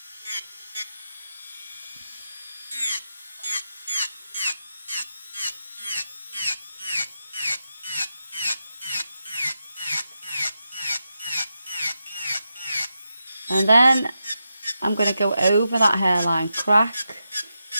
And then I'm going to go over that hairline crack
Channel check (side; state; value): both; inverted; correlation -0.87